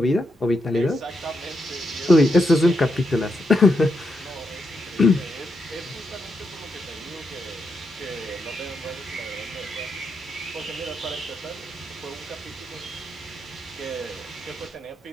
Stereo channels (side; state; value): both; normal; correlation 0.82